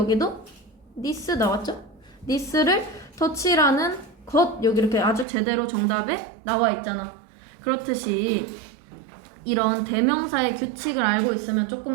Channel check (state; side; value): drops out; left; at 5.2 s